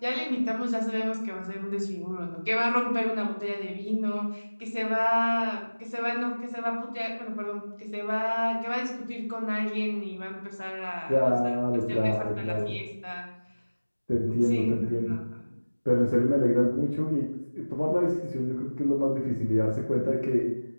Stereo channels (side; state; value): both; inverted; correlation -1.00